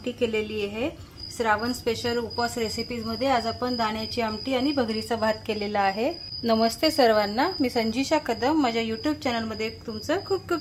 केलेली आहे। श्रावण स्पेशल उपवास रेसिपीज मध्ये आज आपण दाण्याची आमटी आणि भगरीचा भात केलेला आहे। नमस्ते सर्वांना, मी संजीशा कदम माझ्या यूट्यूब चॅनल मध्ये तुमचं खूप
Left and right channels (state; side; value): identical; both; correlation 1.00